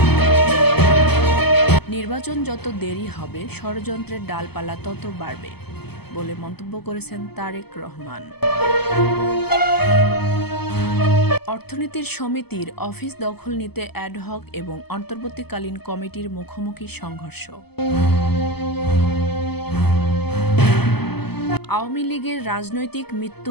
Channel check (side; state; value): right; late; 0.97 ms